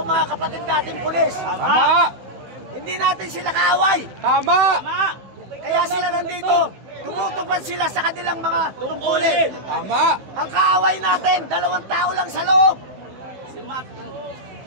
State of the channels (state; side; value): late; left; 15 ms